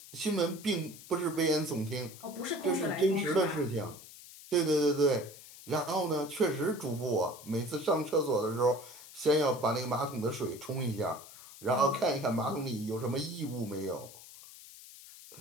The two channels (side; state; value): left; noise; hiss, 17 dB below the sound